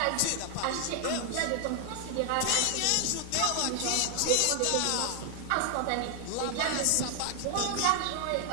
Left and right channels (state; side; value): different; both; correlation 0.00